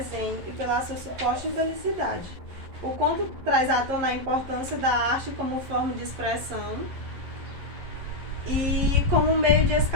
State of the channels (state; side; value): late; left; 11 ms